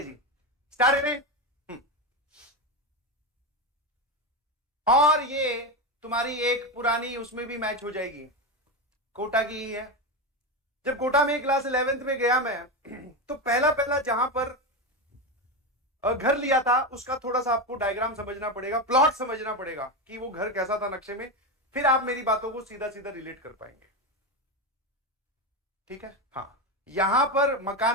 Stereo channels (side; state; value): both; normal; correlation 0.14